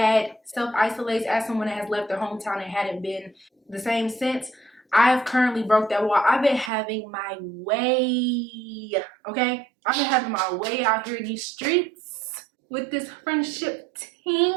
self-isolates, as someone that has left their hometown and hadn't been the same since, I've currently broke that wall. I've been having my way, okay? I've been having my way out here in these streets with this friendship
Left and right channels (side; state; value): left; drops out; at 6.7 s